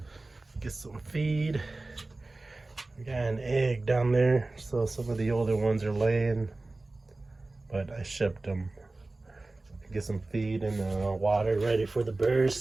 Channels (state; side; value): quieter; left; 3.1 dB